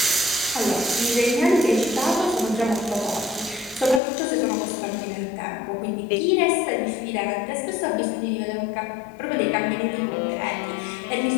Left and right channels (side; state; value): right; drops out; at 4.0 s